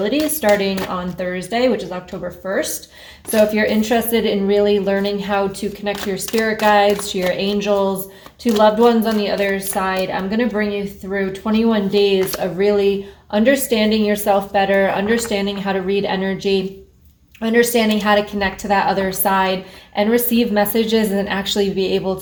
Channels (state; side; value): identical; both; correlation 1.00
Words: starting on Thursday, which is October 1st. So if you're interested in really learning how to connect to your spirit guides, to your angels, to loved ones on the other side, I'm going to bring you through 21 days of really understanding yourself better, understanding how to read energy, understanding how to connect to that other side and receive messages and actually be able